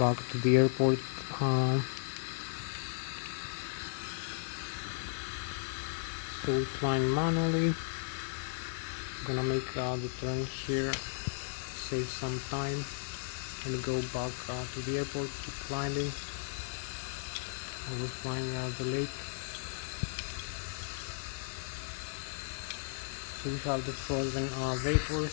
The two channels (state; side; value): silent; right; digital silence